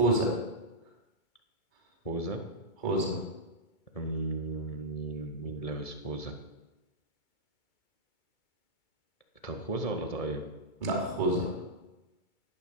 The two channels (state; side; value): late; right; 2.2 ms